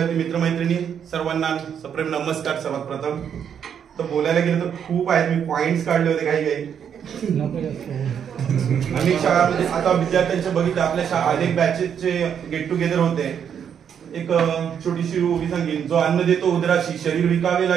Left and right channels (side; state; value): left; quieter; 8.2 dB